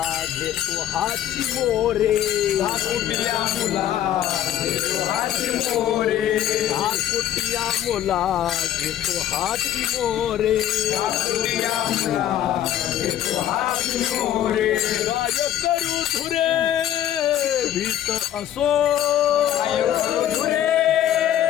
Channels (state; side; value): quieter; right; 11.4 dB